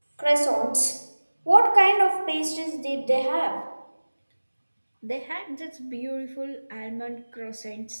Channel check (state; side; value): inverted; both; correlation -1.00